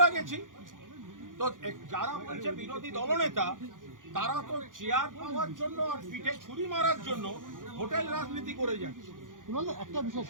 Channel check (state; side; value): late; left; 0.89 ms